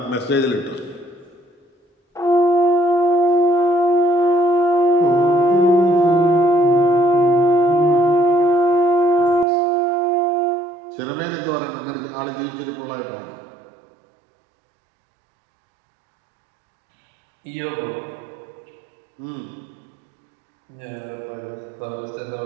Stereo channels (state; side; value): drops out; left; at 9.5 s